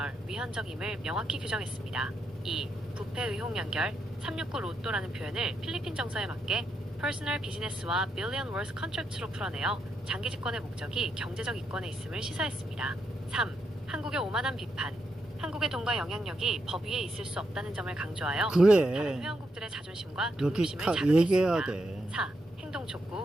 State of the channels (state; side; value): normal; both; correlation 0.82